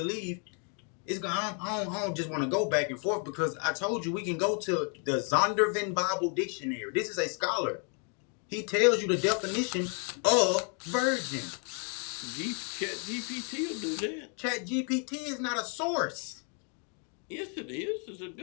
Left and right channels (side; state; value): right; quieter; 39.7 dB